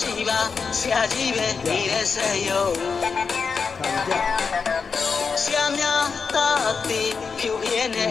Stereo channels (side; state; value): right; quieter; 5.4 dB